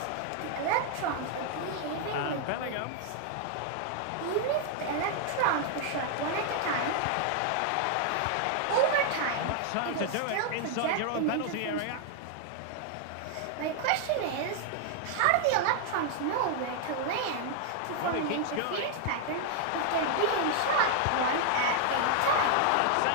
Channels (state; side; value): different; both; correlation 0.00